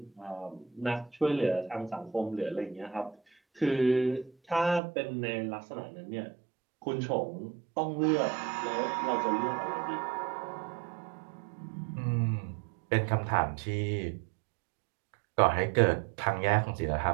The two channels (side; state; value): left; drops out; at 4.8 s